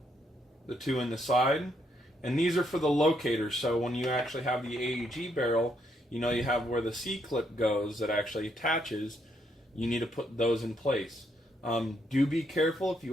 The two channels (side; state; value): both; normal; correlation 0.75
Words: the two in the side. And these are for the locators, so when you actually have the AEG barrel, you know you have where the C-clip goes that actually attaches. You need to put those in place. Do be careful if